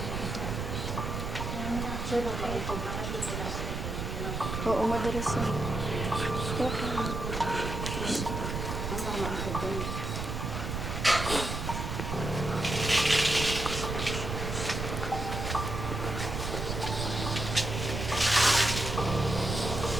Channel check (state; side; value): noise; right; rumble, 3 dB below the sound